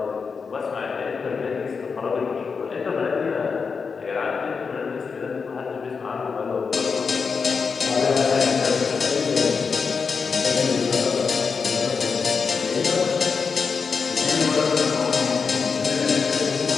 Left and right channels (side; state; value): right; quieter; 5.4 dB